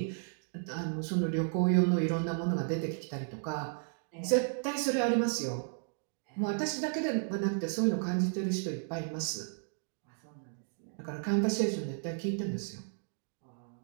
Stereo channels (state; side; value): silent; left; 55 dB below the other